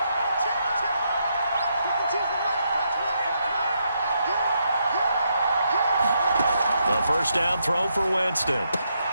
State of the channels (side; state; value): both; inverted; correlation -0.79